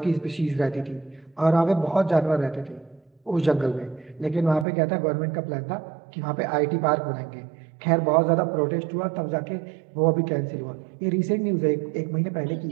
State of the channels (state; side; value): drops out; left; at 4.7 s